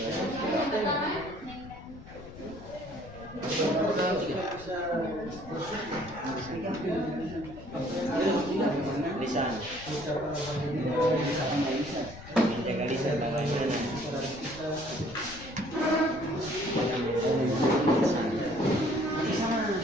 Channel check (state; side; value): noise; left; rumble, 16 dB below the sound